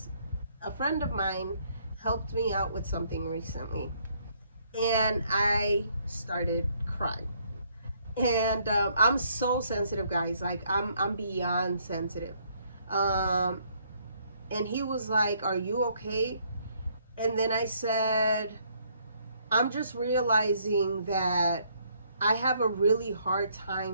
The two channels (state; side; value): inverted; both; correlation -0.68